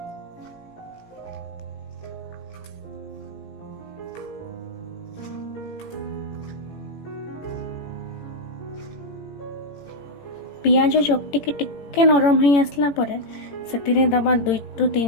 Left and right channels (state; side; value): late; right; 18 ms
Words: पियाज चकटी के टिके नरम हो आसला परे से दबा